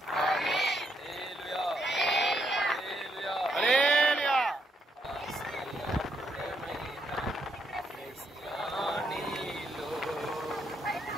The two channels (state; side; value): normal; both; correlation 0.76